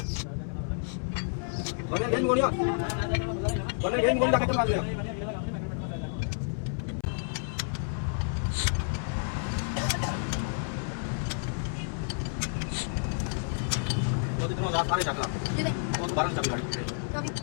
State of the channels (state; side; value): silent; right; 58 dB below the other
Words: बने गेम गोलियां डाके मार दिया। वो रात सारे चकला वो दोबारा चम गाड़ी